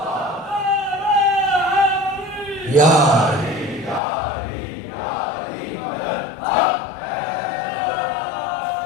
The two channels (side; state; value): right; drops out; at 4.0 s